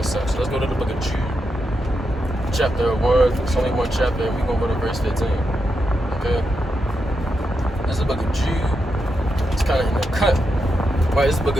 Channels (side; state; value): both; normal; correlation 0.85